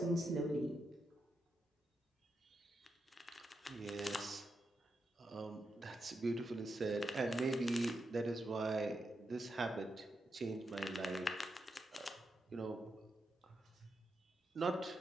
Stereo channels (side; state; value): both; normal; correlation 0.85